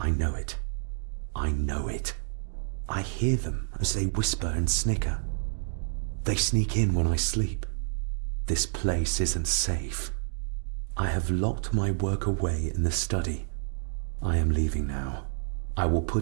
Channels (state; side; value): silent; left; digital silence